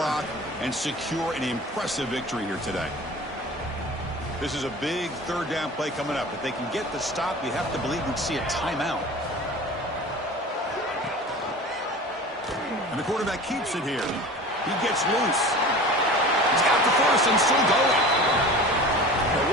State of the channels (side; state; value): both; normal; correlation 0.38